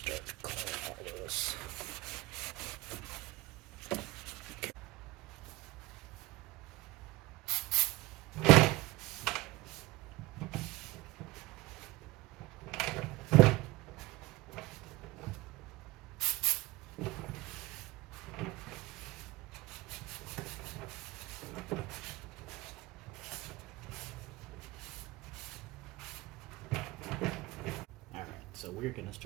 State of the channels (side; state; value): left; quieter; 19.9 dB